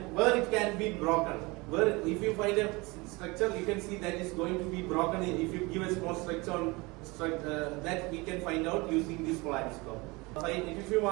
where it can be broken. Where if you find a structure, you can see that is going to be broken. If you give a small structure on that we can find out using this polariscope. If you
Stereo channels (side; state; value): left; quieter; 24.8 dB